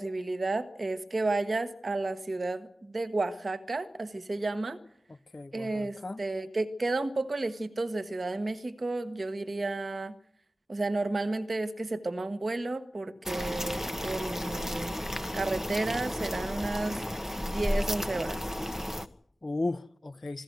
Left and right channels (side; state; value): both; normal; correlation 0.96